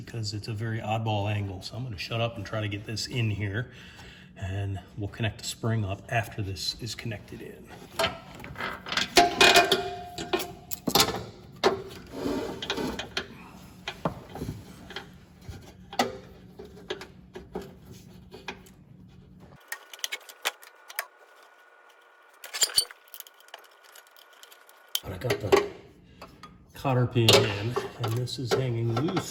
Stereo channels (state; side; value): identical; both; correlation 1.00